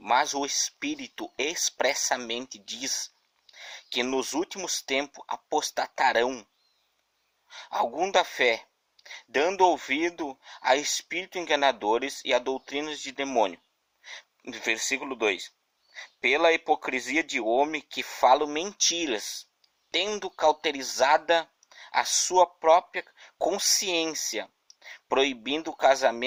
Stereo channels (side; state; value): both; identical; correlation 1.00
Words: o Espírito expressamente diz que nos últimos tempos apostatarão algum da fé, dando ouvido a espíritos enganadores e a doutrinas de demônio. Versículo 2. Pela hipocrisia de homem que falam mentiras, tendo cauterizada a sua própria consciência, proibindo o